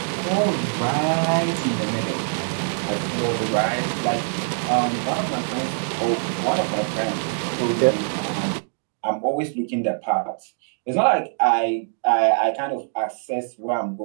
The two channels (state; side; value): silent; left; digital silence